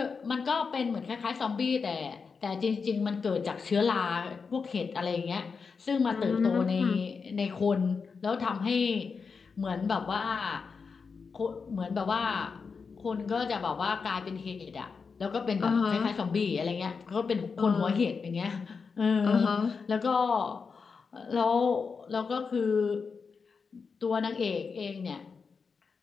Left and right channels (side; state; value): right; quieter; 5.3 dB